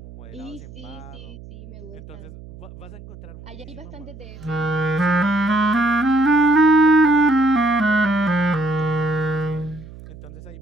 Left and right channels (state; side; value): noise; right; hum, 17 dB below the sound